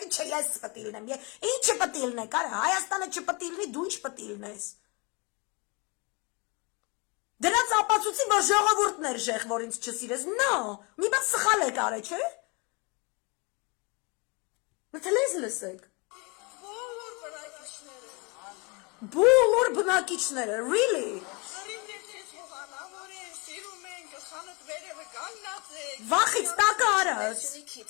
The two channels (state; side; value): quieter; right; 29.7 dB